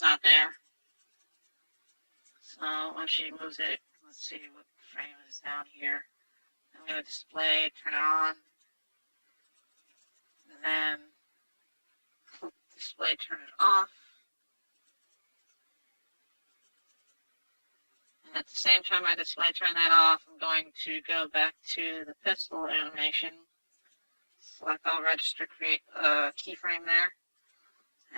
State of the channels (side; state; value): both; inverted; correlation -1.00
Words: there. So once she moves it, let's see what frame is down here. I'm going to display, turn it on, and then display, turn it off. And at the same time I display turn that off, I'm going to go back to the pistol animation, select all register, create a keyframe there,